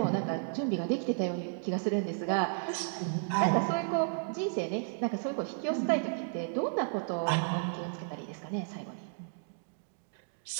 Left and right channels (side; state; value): left; silent; digital silence